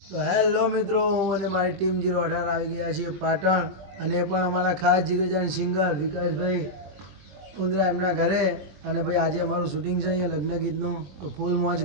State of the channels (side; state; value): left; late; 21 ms